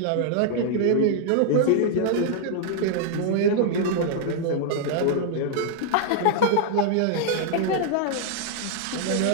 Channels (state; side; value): different; both; correlation -0.01